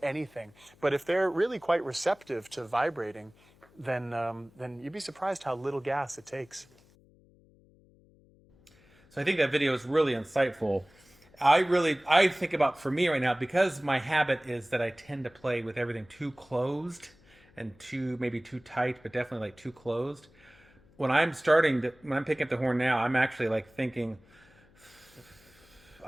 But if they're really quite receptive to vibrating, then you'd be surprised how little gas it takes. So I think that video is really insightful. I think about, for me right now, because my habit is that I tend to play with everything too closed and maybe too tight, but definitely like too closed. When I'm picking up the horn now, I'm actually thinking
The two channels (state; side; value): noise; left; hum, 29 dB below the sound